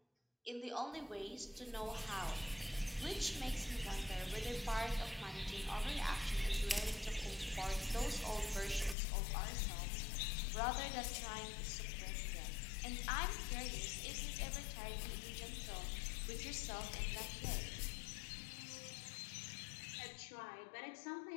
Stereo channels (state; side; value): drops out; right; at 9.0 s